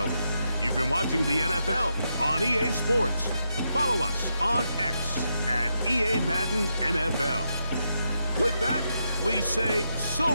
You've been watching the NFL on EA Sports. Follow us on X at EA Madden NFL. With that, we say so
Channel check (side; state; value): both; inverted; correlation -0.83